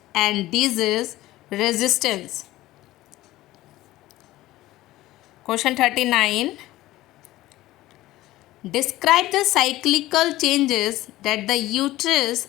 and disease resistance. Question 39. Describe the cyclical changes that the uterus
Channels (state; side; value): quieter; right; 16.6 dB